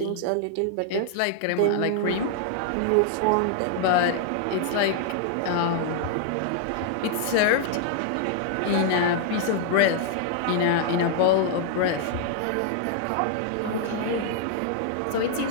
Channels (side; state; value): both; different; correlation -0.01